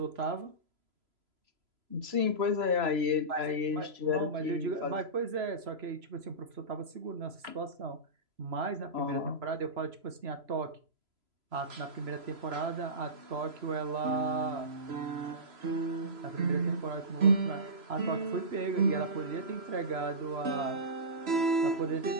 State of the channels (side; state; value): left; late; 3.0 ms